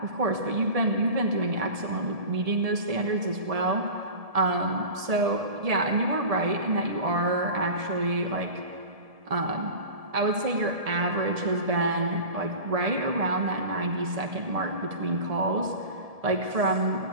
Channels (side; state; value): left; late; 1.7 ms